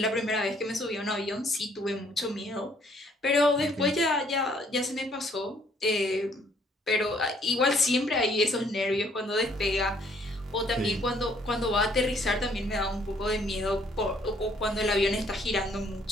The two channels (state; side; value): normal; both; correlation 0.64